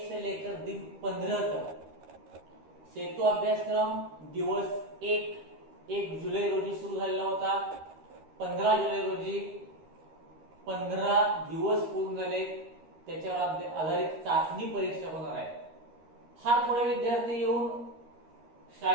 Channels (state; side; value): late; left; 13 ms